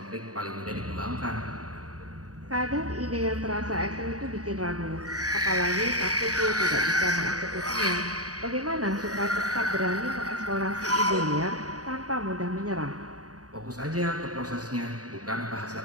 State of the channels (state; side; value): late; left; 0.67 ms